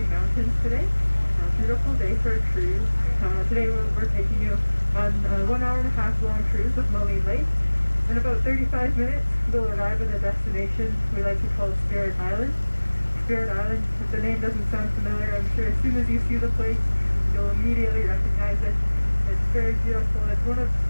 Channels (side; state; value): both; inverted; correlation -1.00